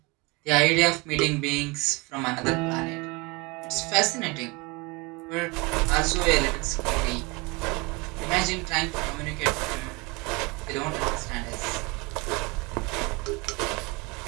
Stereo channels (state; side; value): quieter; left; 26.4 dB